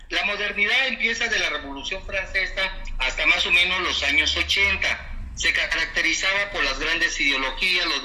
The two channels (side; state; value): both; identical; correlation 1.00